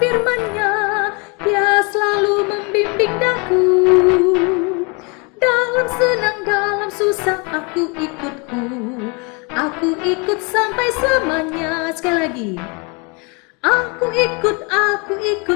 Dia selalu membimbing daku. Dalam senang, dalam susah, aku ikutku. Aku ikut sampai selamanya. Sekali lagi. Aku ikut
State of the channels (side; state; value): right; quieter; 31.4 dB